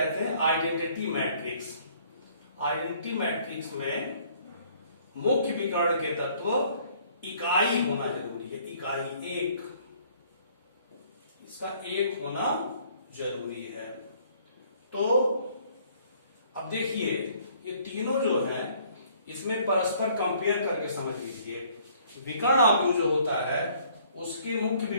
हैं आइडेंटिटी मैट्रिक्स। आइडेंटिटी मैट्रिक्स में मुख्य विकर्ण के तत्व इकाई होना जरूरी है। इकाई 1, इसका 1 होना जरूरी है। तो अब देखिए ये तीनों जो हैं इसमें परस्पर कंपेयर करके समझ लीजिए। विकर्ण अवयव जो होता है उसके मुख्य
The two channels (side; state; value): both; inverted; correlation -0.60